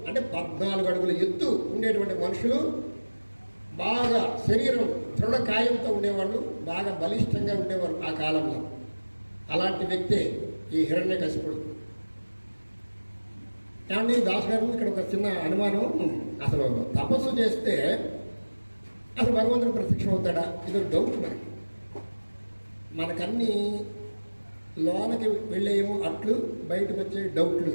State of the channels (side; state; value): both; inverted; correlation -1.00